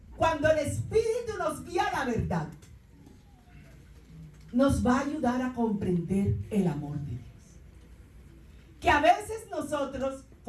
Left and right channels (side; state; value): both; identical; correlation 1.00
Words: cuando el Espíritu nos guía a la verdad, nos va a ayudar a comprender el amor de Dios. Que a veces nosotros,